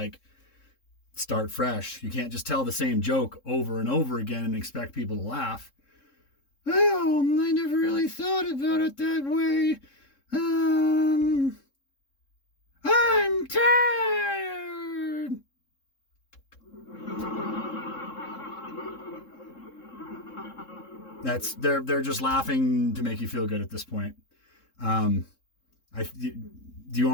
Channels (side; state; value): right; late; 3.7 ms